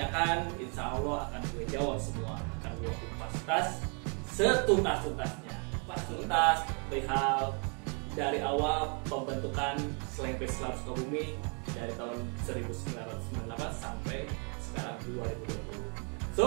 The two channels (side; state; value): left; quieter; 36.6 dB